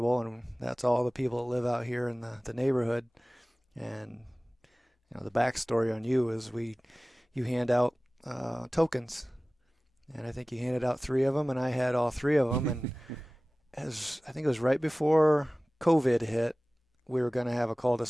And that's all the people that live out here in the neighborhood. And, the backstory on you is you hand out tokens. And I think you handed out 3 of them, and I had all 3 of them. And as I think it was right before COVID hit, we were going to have a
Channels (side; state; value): both; normal; correlation 0.98